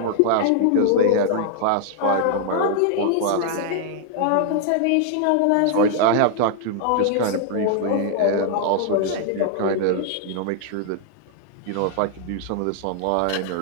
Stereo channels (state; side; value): different; both; correlation 0.00